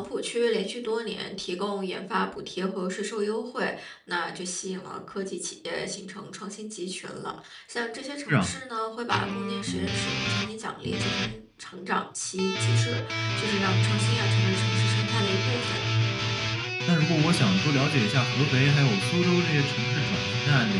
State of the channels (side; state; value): both; identical; correlation 1.00